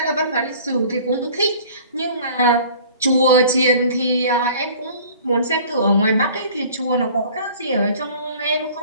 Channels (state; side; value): inverted; both; correlation -0.48